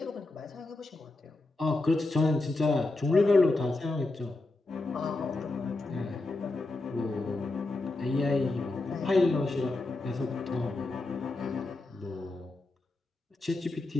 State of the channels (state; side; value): quieter; right; 3.0 dB